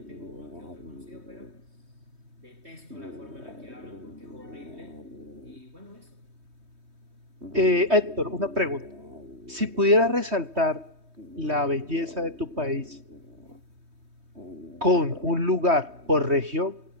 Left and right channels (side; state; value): left; late; 3.2 ms